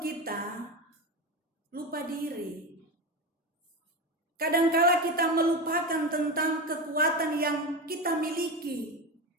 lupa diri. Kadangkala kita melupakan tentang kekuatan yang kita miliki,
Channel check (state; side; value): normal; both; correlation 0.20